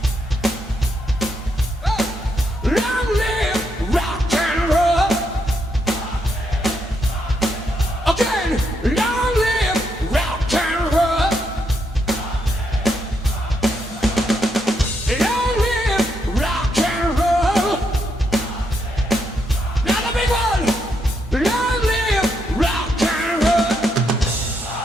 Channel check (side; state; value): both; normal; correlation 0.79